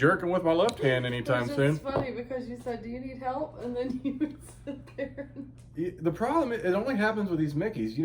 with my left hand anytime soon. It's funny because you said, do you need help? And then you would sit there. The problem is, it only happens with these Mickeys. You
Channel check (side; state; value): both; identical; correlation 1.00